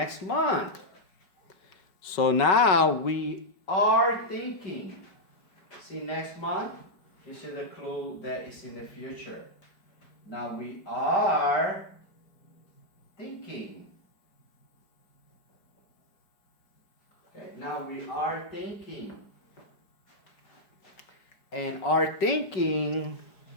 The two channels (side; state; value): right; late; 5.3 ms